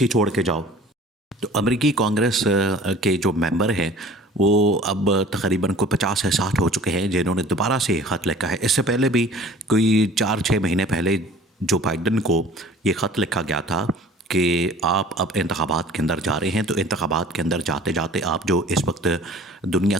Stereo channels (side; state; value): both; normal; correlation 0.47